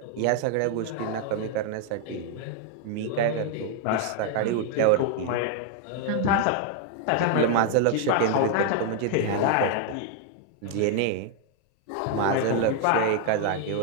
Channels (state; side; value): different; both; correlation 0.00